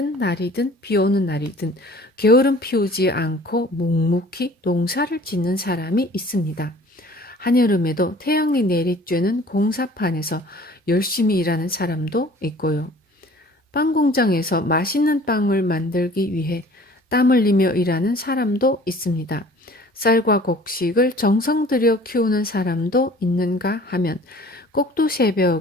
날이든 비 오는 날이든 게으름 피우지 않고 묵묵히 농사를 짓는 사람이 있습니다. 한여름에도 태양이 내리쬐는 공사판에서 열심히 일하는 사람도 있고요. 빵 공장에서 맛있는 빵을 만들기 위해 땀 흘리며 일하는 사람도 있습니다. 쌀과 곡식을 정성 들여 키우는 사람도 있는가 하면 꼭두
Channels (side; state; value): both; normal; correlation 0.49